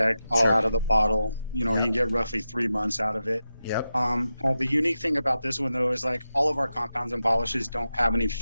all out of the bottle. You know, you can get roughly 3 months out of it. Yep. The unique thing about this one, though, is like all of our compounds and polishes don't have any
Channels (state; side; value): inverted; both; correlation -0.91